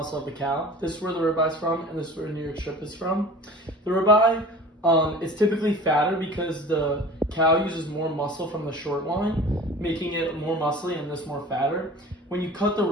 of the cow. This is where the ribeye is from, and this is where the New York strip is from. The ribeye is typically fatter because the cow uses more muscle from the short line, making it more muscly and this more fatter. When you cut the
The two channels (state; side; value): normal; both; correlation 0.41